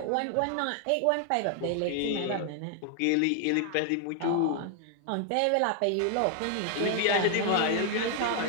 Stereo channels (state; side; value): different; both; correlation 0.00